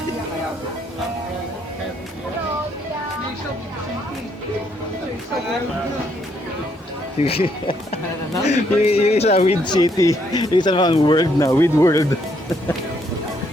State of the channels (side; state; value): both; normal; correlation 0.72